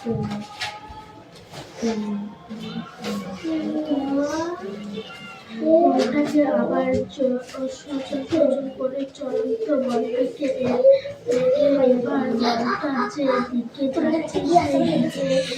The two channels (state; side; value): identical; both; correlation 1.00